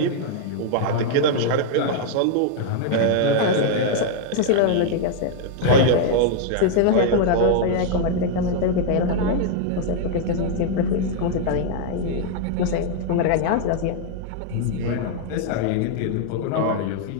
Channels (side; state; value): both; different; correlation 0.00